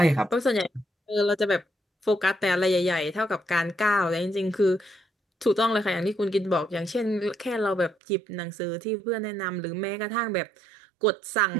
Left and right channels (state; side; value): drops out; left; at 8.0 s